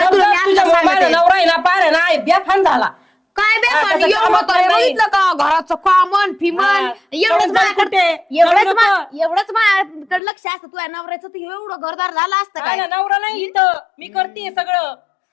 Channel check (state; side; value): drops out; right; at 10.2 s